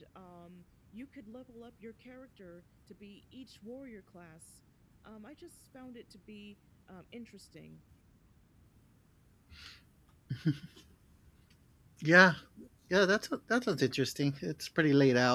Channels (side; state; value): both; identical; correlation 1.00